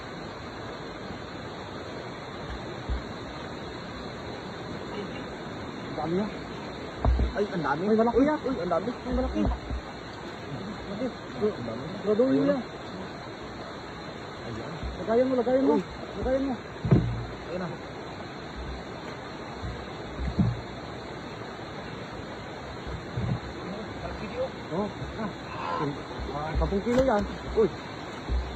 Ang dami na. Ay, ang dami. May malaki yan. Uy, ang dami. May malaki. Malaki. Ang dami. Graduin Ayun. yan. Ayan. Lagayan mo, lagayan mo. Uy. Lagayan mo. Ayun na. Oh, ah. 10 kilo yan. Uy.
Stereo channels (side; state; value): both; identical; correlation 1.00